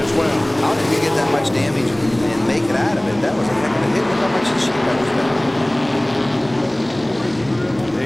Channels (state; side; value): noise; right; rumble, 24 dB below the sound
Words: well. How did he get that much damage and make it out of it? That was a heck of a hit. Look how much the sheet metal's down.